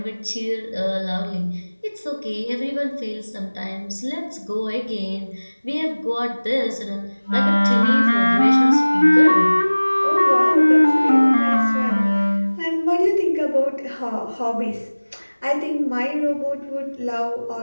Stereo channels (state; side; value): inverted; both; correlation -1.00